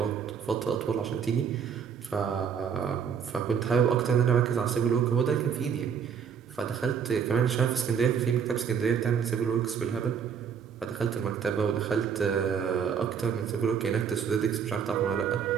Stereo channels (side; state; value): left; quieter; 7.3 dB